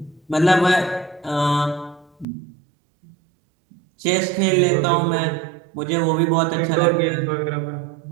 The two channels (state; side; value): drops out; left; at 2.2 s